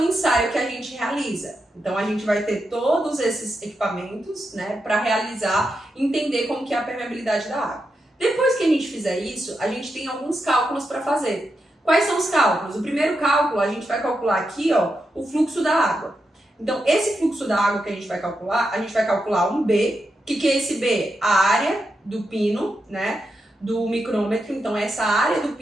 ensaio que a gente realiza. Então, a gente vai ter todos esses equipamentos, né, para realizar, entender como que é a permeabilidade da água. Depois que a gente fizer isso, a gente tem alguns cálculos para fazer. Quais são os cálculos? O primeiro cálculo, a gente vai calcular aqui, ó, o fluxo da água. Então, esse fluxo da água que a gente vai calcular um B. O que é esse B? A área do pino, né, do micrômetro. Então, essa área do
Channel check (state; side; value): normal; both; correlation 0.86